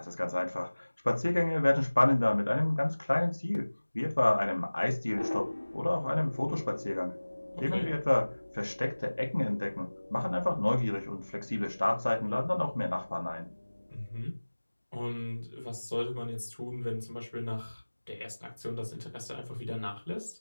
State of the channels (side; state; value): both; inverted; correlation -1.00